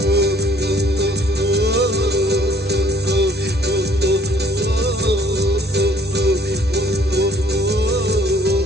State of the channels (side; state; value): both; normal; correlation 0.58